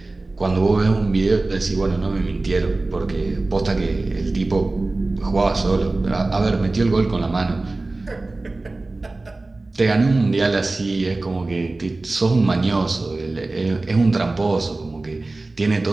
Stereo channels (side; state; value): left; quieter; 3.2 dB